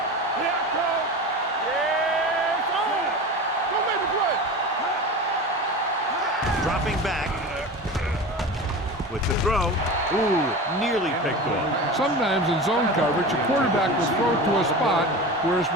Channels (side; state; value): both; normal; correlation 0.30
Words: Here I come. Yes, on. Don't make the play. Dropping back with the throw. Ooh, nearly picked off. Sometimes in zone coverage, a quarterback will throw to a spot where his